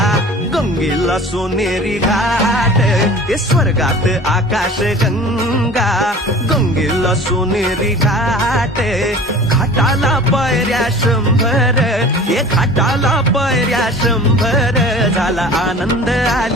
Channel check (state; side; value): normal; both; correlation 0.42